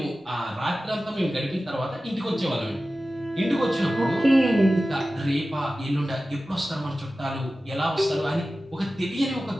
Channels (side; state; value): both; normal; correlation 0.95